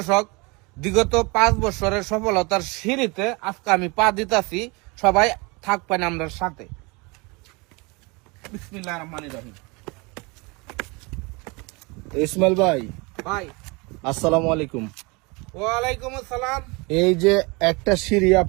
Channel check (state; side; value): quieter; left; 27.5 dB